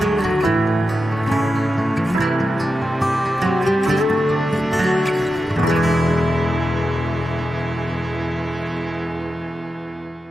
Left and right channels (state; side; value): normal; both; correlation 0.90